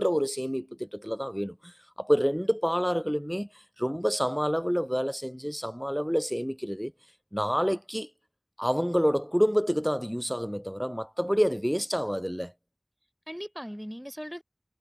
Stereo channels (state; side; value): identical; both; correlation 1.00